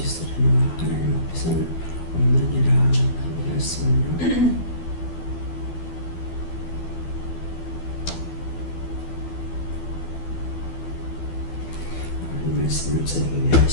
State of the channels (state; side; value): late; right; 12 ms